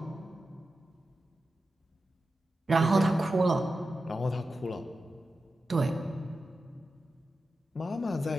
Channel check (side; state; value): both; normal; correlation 0.92